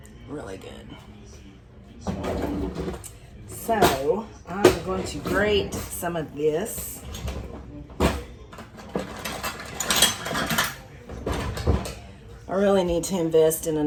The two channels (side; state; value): both; identical; correlation 1.00